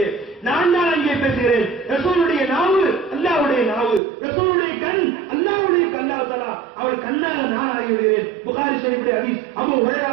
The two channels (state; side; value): drops out; left; at 4.0 s